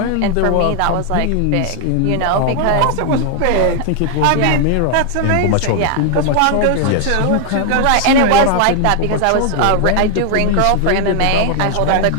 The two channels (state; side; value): different; both; correlation 0.00